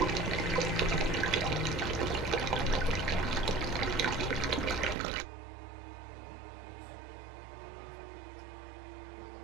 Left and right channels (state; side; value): drops out; left; at 5.0 s